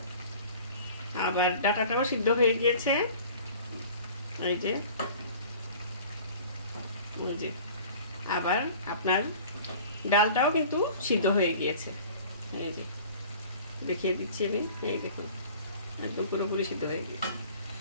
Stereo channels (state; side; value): inverted; both; correlation -0.45